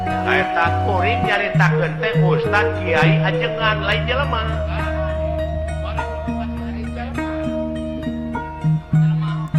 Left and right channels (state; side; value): identical; both; correlation 1.00